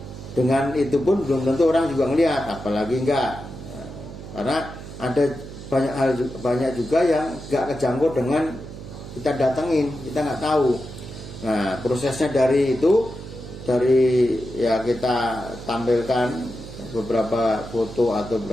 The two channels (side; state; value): right; noise; hum, 12 dB below the sound